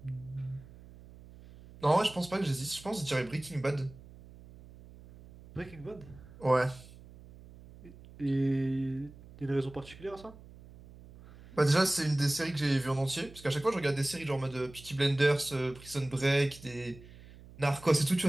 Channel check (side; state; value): right; noise; hum, 20 dB below the sound